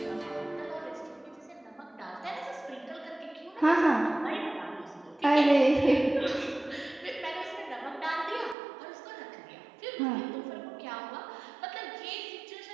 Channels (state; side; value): drops out; left; at 8.6 s